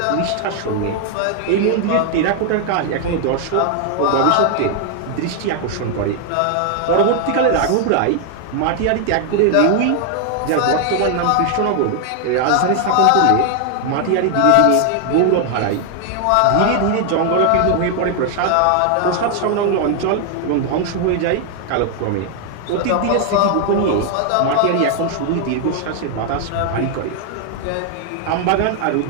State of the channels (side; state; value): both; different; correlation 0.00